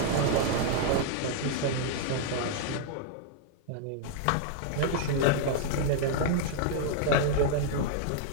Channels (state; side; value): different; both; correlation -0.01